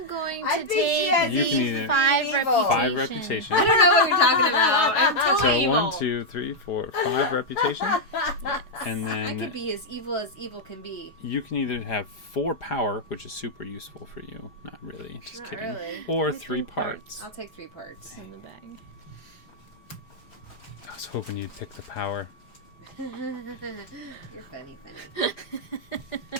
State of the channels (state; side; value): late; right; 5.0 ms